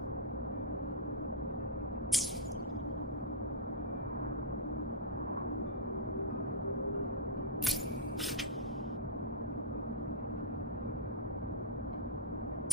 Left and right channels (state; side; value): normal; both; correlation -0.04